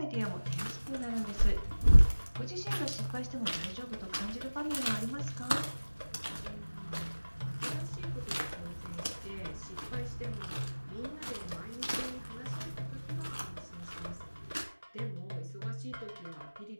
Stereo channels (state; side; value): inverted; both; correlation -1.00